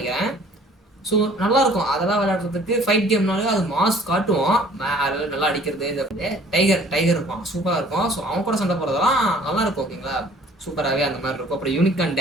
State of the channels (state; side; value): normal; both; correlation 0.54